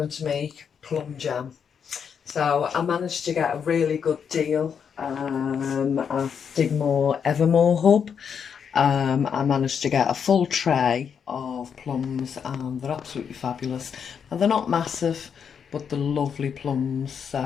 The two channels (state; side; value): quieter; right; 7.1 dB